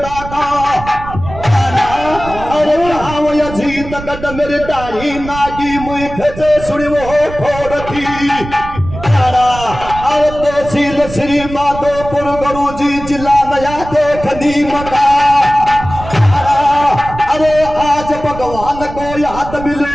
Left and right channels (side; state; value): right; noise; rumble, 11 dB below the sound